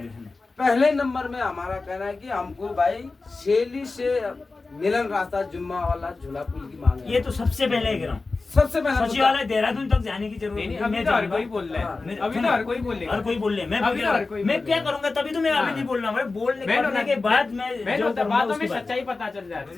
के लिए। पहले नंबर में हमारा कहना है कि हमको भाई शैली से मिलन रास्ता जुम्मा वाला झूला पुल की मांग है। ये तो सबसे पहले कह रहा हूँ, सबसे पहले सचिवालय देहरादून तक जाने की जरूरत नहीं। अभी तो हर कोई बोल रहा है, अभी तो हर कोई बोल रहा है, हर कोई बोल रहे मैं क्या करूंगा, तभी तो मैं अभी नहीं बोल रहा हूँ। बोलने के बाद मैं जो बातों में सच्चाई पता चल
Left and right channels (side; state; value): right; quieter; 3.7 dB